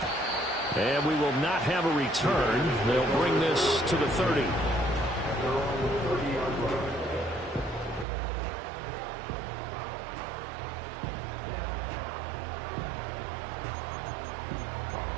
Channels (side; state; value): left; drops out; at 8.1 s